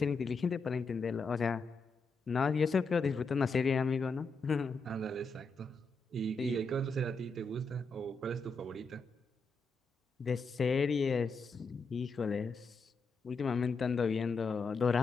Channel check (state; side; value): quieter; right; 3.7 dB